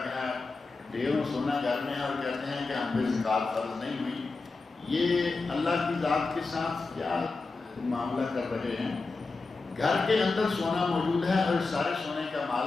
ہے، ڈھیروں سونا گھر میں ہے، اور کہتے ہیں کہ ہم پہ زکوٰۃ فرض نہیں ہوئی. یہ اللہ کی ذات کے ساتھ کیا معاملہ کر رہے ہیں؟ گھر کے اندر سونا موجود ہے اور سارے سونے کا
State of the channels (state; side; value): quieter; right; 3.9 dB